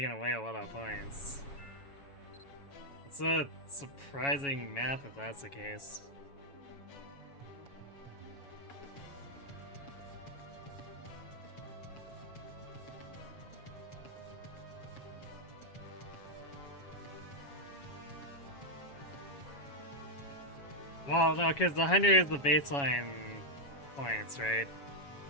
away a lot of points. It's a surprising map if that's the case. Well, no, because the 100 is the baseline points, right?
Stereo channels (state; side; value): late; right; 7.2 ms